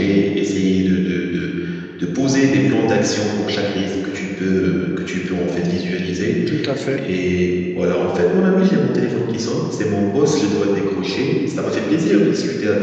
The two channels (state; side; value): identical; both; correlation 1.00